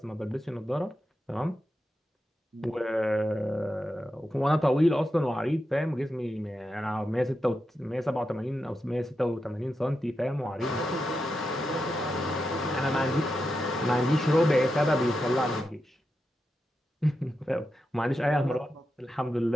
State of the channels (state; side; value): normal; both; correlation 0.88